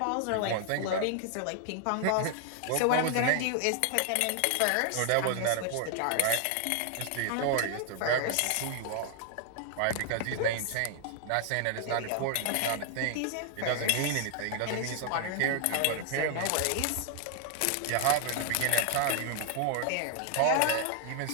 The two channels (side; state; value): both; different; correlation 0.00